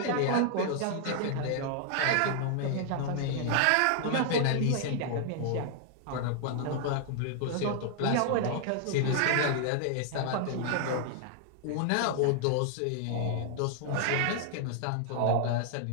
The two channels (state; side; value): different; both; correlation 0.00